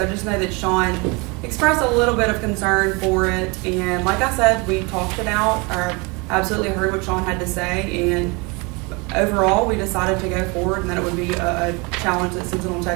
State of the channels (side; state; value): left; quieter; 28.4 dB